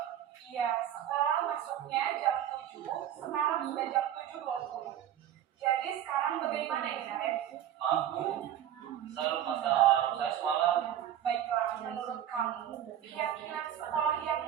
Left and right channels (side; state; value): left; quieter; 10.8 dB